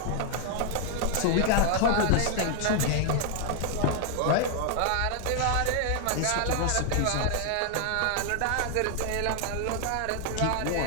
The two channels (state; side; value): different; both; correlation 0.00